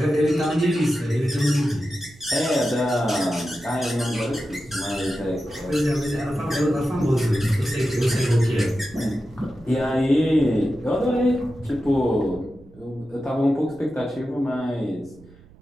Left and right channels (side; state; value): right; noise; rumble, 24 dB below the sound